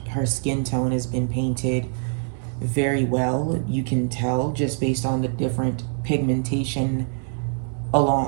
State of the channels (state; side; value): silent; left; 57 dB below the other